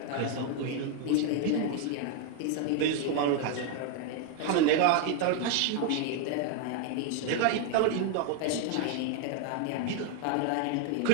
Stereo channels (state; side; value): different; both; correlation 0.01